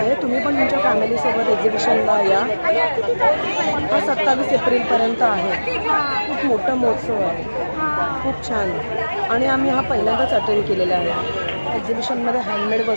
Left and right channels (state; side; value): inverted; both; correlation -1.00